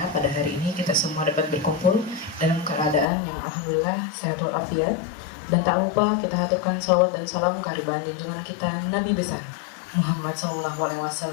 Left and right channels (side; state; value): right; drops out; at 3.1 s